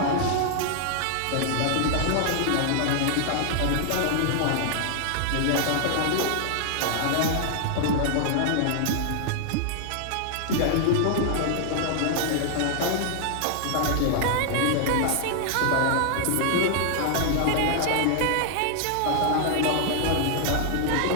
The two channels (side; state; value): both; different; correlation 0.00